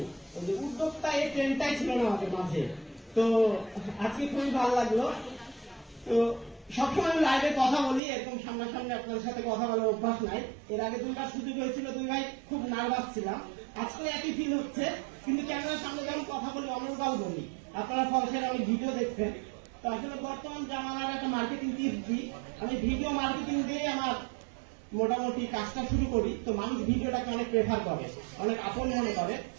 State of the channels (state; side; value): drops out; left; at 8.0 s